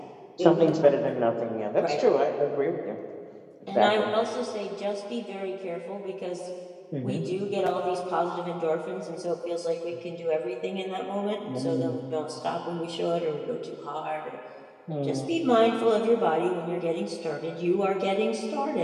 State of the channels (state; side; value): identical; both; correlation 1.00